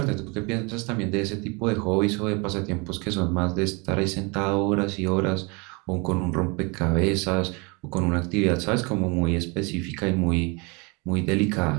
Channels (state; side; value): quieter; left; 29.5 dB